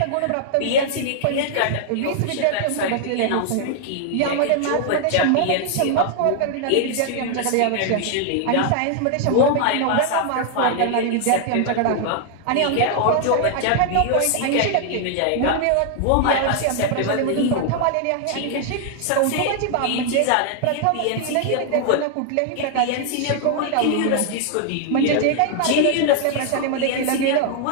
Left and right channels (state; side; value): different; both; correlation 0.00